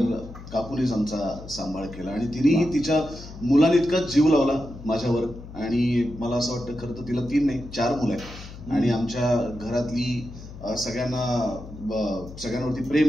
काकूनेच आमचा सांभाळ केला आणि तिनेही तिच्या मुलांइतका जीव लावला माझ्यावर. आणि मला असं वाटतं खरं तर तिला 3 नाही 4 मुलं आहेत आणि आमच्या घरातली सगळ्यांवरती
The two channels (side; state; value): left; noise; hum, 14 dB below the sound